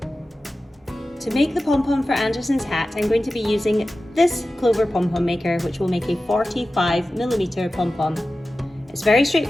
To make the pom-pom for Anderson's hat, I'm going to be using this Clover Pom Pom maker, which will make a 45mm pom-pom. It's very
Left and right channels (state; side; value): normal; both; correlation 0.94